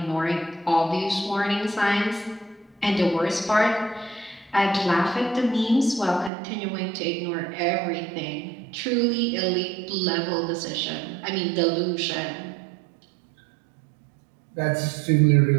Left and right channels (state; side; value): drops out; left; at 6.3 s